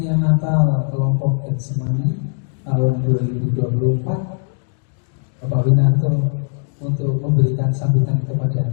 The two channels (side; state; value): right; silent; digital silence